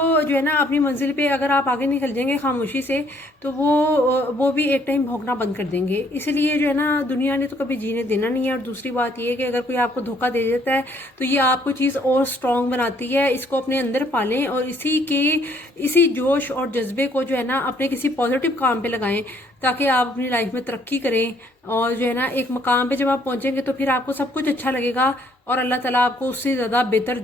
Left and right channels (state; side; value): normal; both; correlation 0.65